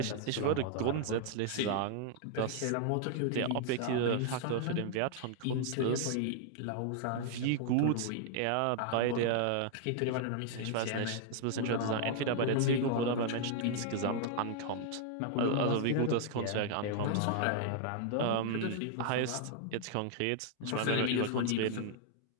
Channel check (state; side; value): different; both; correlation 0.00